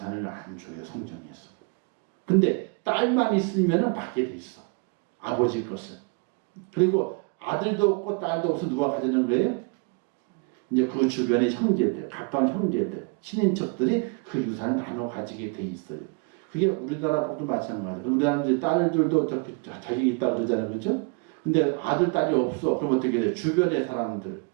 안 줘요. 성경에서. 근데 딸만 있으면 받게 돼 있어. 아버지 것을. 그리고 아들도 없고 딸도 없어 누가 가지는 거예요? 이제 그 주변의 형제들, 가까운 형제들, 친인척들이 그 유산을 나눠 가지게 돼 있어요. 그게 우리나라도 마찬가지예요. 우리나라는 이제 딸들도 자격이 있다고 그러잖아요. 그렇죠? 근데 아들, 딸이 없어. 그럼 어떻게 돼요? 주변의 사람들,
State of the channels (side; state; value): left; quieter; 33.2 dB